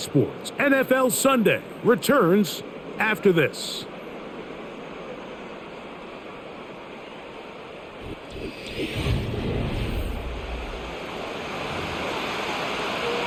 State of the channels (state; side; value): identical; both; correlation 1.00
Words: NFL Sunday returns after this.